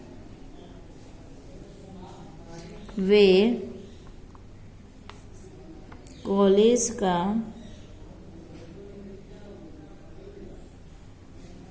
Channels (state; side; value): identical; both; correlation 1.00